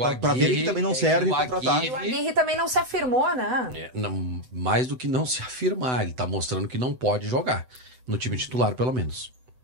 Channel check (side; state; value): left; late; 7.9 ms